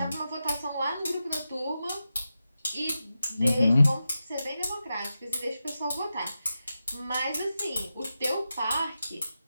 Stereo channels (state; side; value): inverted; both; correlation -0.90